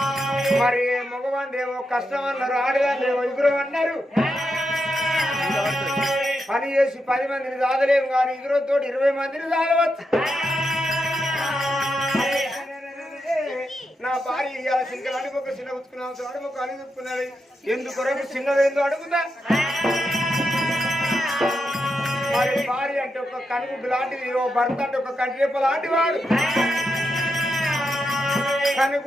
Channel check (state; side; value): normal; both; correlation 0.85